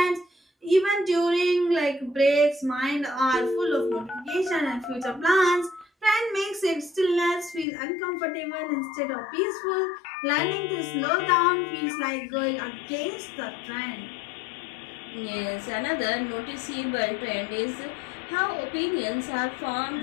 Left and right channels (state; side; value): drops out; right; at 7.7 s